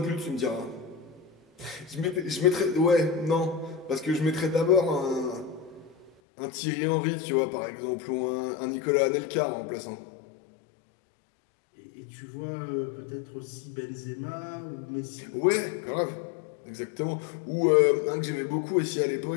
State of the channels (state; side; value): drops out; right; at 6.1 s